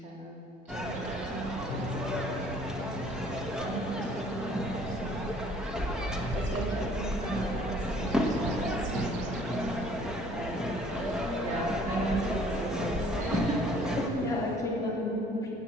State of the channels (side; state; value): both; normal; correlation 0.57